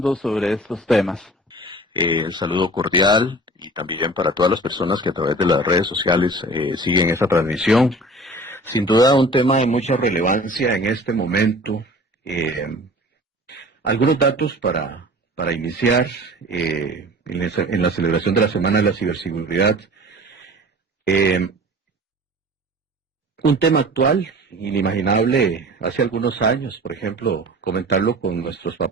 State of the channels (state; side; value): normal; both; correlation 0.43